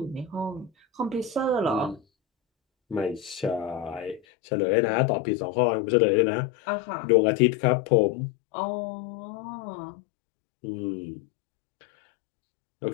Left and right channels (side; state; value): right; drops out; at 4.2 s